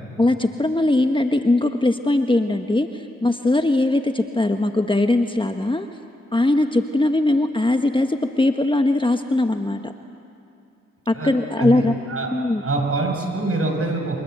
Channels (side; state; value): both; normal; correlation 0.82